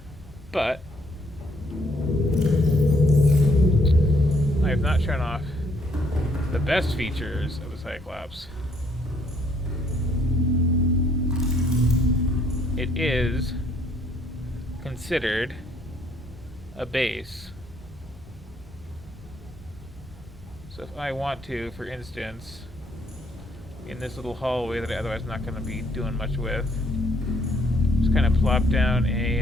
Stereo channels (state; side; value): normal; both; correlation 0.68